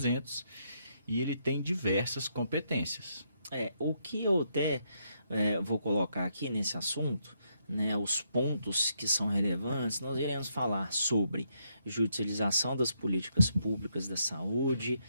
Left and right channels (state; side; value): inverted; both; correlation -0.77